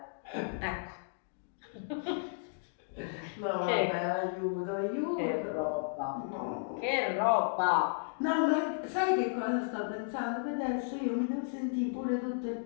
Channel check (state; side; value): silent; right; digital silence